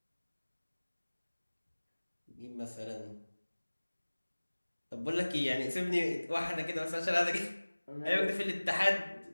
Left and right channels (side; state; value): both; inverted; correlation -1.00